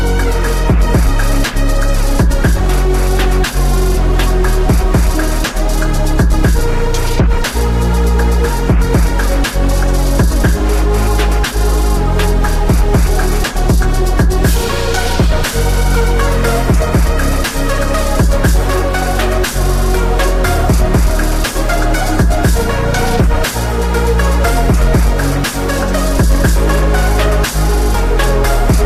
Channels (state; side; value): identical; both; correlation 1.00